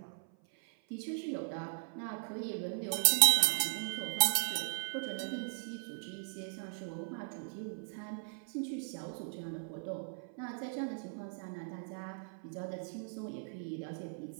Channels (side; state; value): left; silent; 53 dB below the other